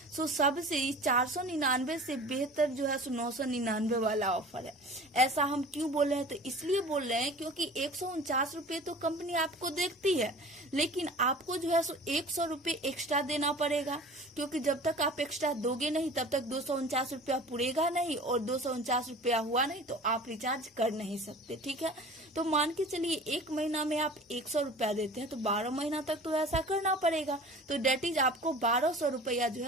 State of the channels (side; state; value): both; normal; correlation 0.41